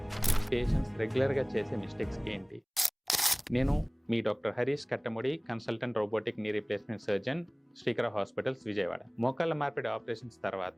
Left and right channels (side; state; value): both; identical; correlation 1.00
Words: పేషెంట్స్ రెగ్యులర్గా చేసే మిస్టేక్స్ ఏంటి? నేను మీ doctor Harish Kattamudi, consultant robotic knee replacement surgeon, Srikara hospitals, Vijayawada. మోకాళ్ళ మార్పిడి ఆపరేషన్స్